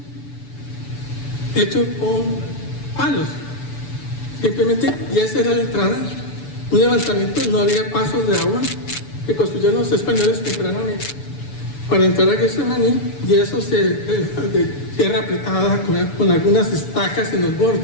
hecho con palos, simplemente, y esa era la entrada, un levantamiento, no había pasos de agua que construyeron los españoles tempranamente para entrar a Getsemaní, y eso de tierra apretada con algunas estacas en los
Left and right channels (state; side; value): late; right; 6.9 ms